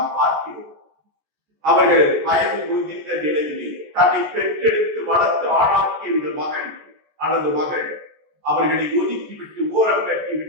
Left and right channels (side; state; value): left; late; 13 ms